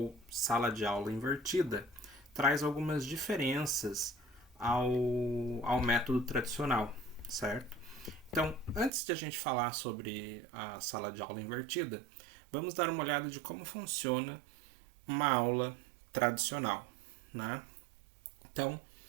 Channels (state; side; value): drops out; left; at 8.9 s